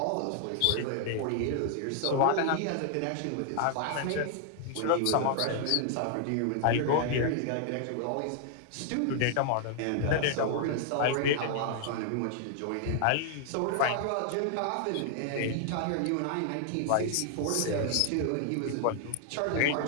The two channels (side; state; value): both; different; correlation 0.00